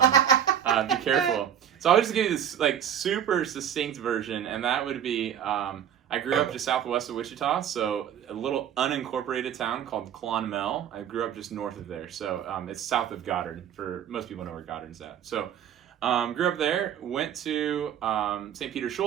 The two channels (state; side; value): quieter; left; 9.3 dB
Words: careful. So I'll just give you this super succinct version, and that would be I grew up just southwest of Wichita, so a little unincorporated town called Clonmel. I grew up just north of there, so it's south of Goddard. For most people know where Goddard's at. So grew up there, went to St. Peter